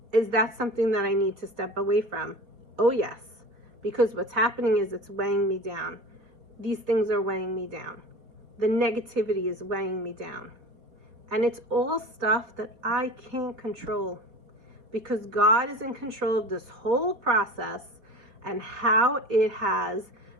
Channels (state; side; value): late; left; 4.1 ms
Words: Is that something that I need to step away from? Oh yes, because what's happening is it's weighing me down. These things are weighing me down. The negativity is weighing me down. And it's all stuff that I can't control, because God is in control of this whole process and how it has